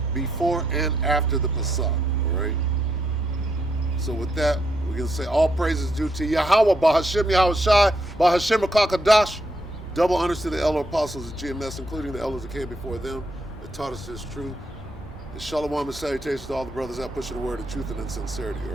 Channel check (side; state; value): both; normal; correlation 0.77